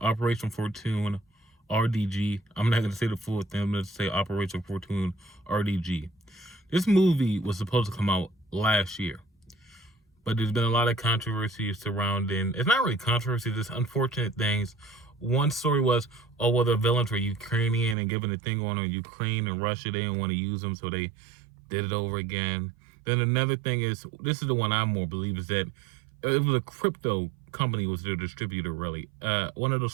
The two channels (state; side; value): drops out; left; at 17.9 s